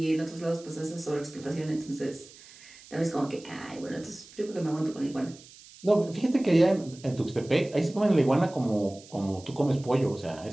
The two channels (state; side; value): noise; right; hiss, 21 dB below the sound